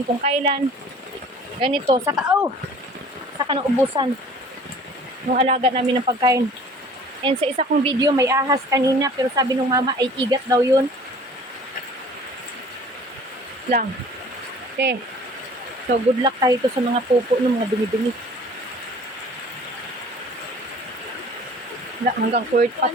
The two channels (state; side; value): normal; both; correlation 0.48